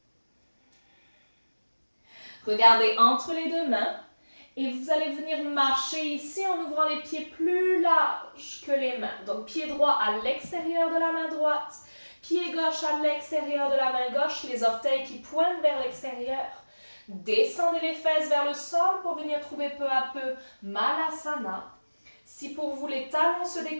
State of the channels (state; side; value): inverted; both; correlation -1.00